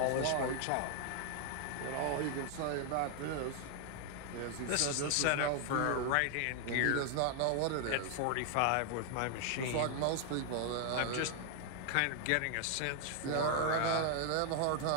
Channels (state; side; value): different; both; correlation 0.00